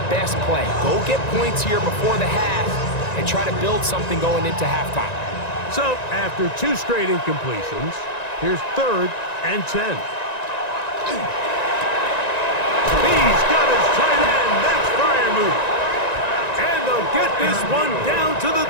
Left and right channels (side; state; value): right; late; 1.9 ms